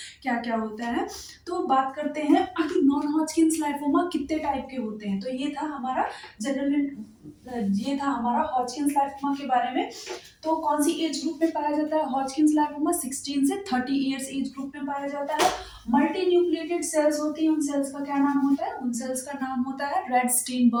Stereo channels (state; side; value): identical; both; correlation 1.00